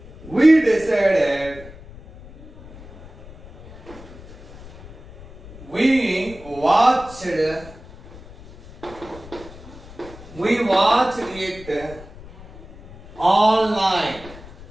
We decided, we watched it all night.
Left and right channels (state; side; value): noise; left; rumble, 18 dB below the sound